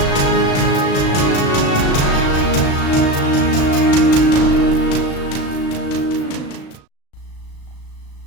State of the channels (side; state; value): right; late; 36 ms